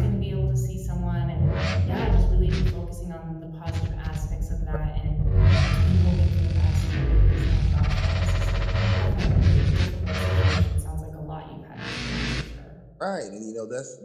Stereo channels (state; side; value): identical; both; correlation 1.00